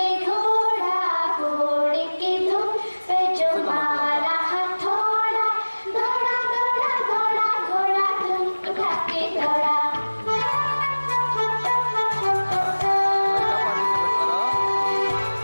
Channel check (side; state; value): both; inverted; correlation -1.00